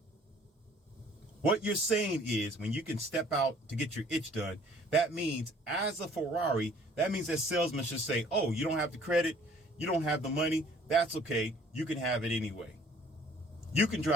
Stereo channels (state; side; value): normal; both; correlation 0.56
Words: What you're saying is when you can step out to get your itch done, that means as a Ferrari, that means that salesman should say, oh, you don't have the credit, you don't have the money, that's okay, you can have it anyway. You can